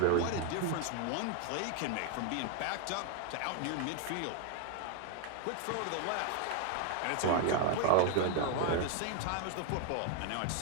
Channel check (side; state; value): both; different; correlation 0.00